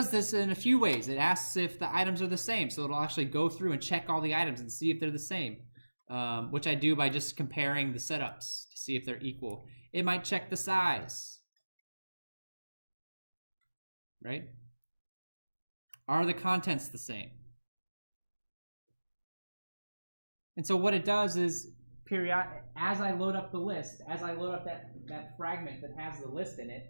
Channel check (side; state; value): both; inverted; correlation -1.00